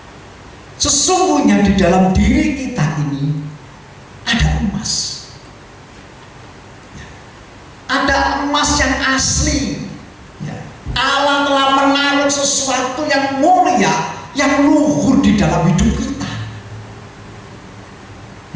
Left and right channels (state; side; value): identical; both; correlation 1.00